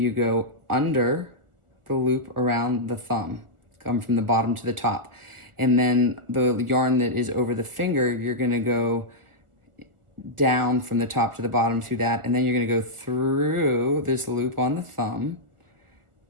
go under the loop around the thumb, come from the bottom to the top. And then the yarn that is over the finger, you're gonna go down from the top to the bottom through that, and then you're gonna go through this loop on the thumb,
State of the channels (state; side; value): late; left; 1.4 ms